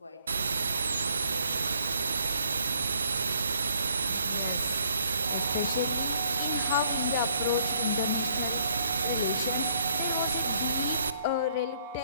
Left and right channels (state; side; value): inverted; both; correlation -0.67